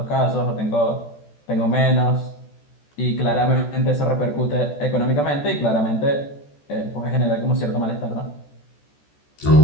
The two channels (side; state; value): right; late; 14 ms